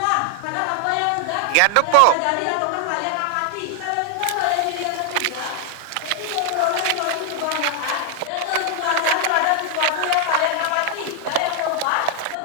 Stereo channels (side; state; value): both; different; correlation 0.00